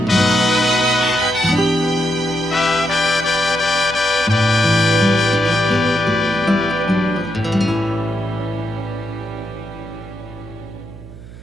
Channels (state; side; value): noise; right; hum, 16 dB below the sound